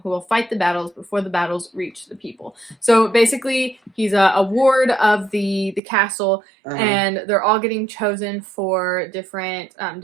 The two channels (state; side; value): drops out; left; at 5.8 s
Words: who will fight the battles before the battles reach the people. So basically, he's a ward of the castle, and they're all getting chosen for different